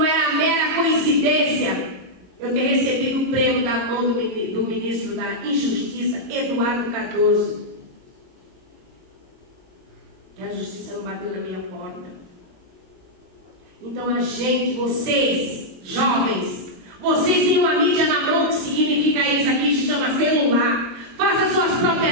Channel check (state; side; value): late; left; 22 ms